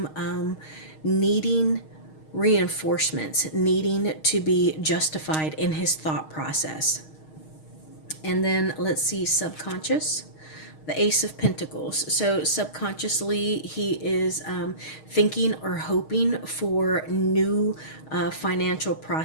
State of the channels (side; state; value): right; late; 6.4 ms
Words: needing reinforcements, needing to be justified in his thought process. And then let's see, subconscious, the Ace of Pentacles. So subconsciously, he is thinking or hoping for new financial